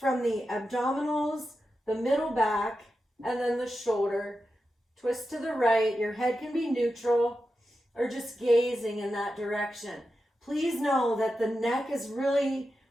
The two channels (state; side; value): normal; both; correlation 0.90